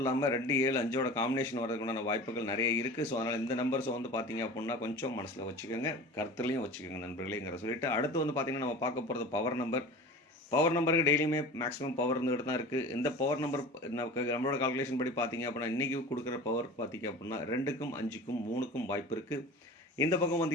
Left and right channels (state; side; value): normal; both; correlation 0.37